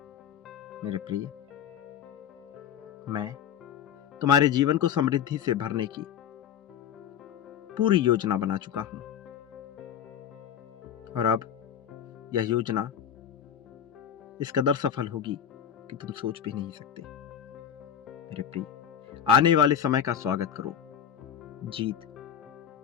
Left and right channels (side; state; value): right; quieter; 9.0 dB